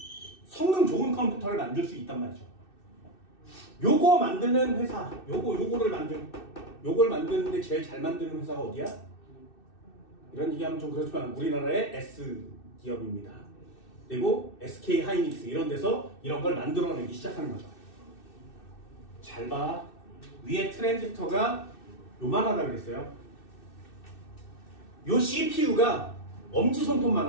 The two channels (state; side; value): late; right; 2.6 ms